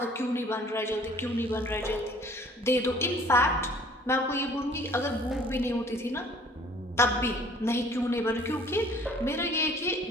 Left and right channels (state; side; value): normal; both; correlation 0.53